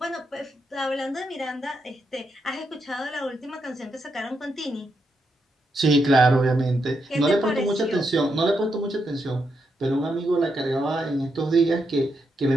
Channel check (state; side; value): normal; both; correlation 0.82